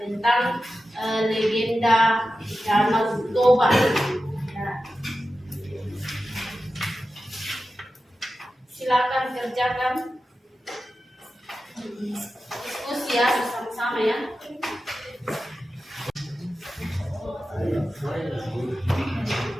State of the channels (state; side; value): normal; both; correlation 0.93